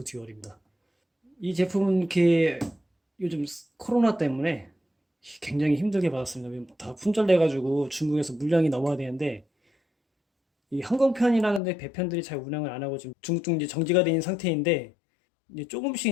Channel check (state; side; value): drops out; right; at 11.6 s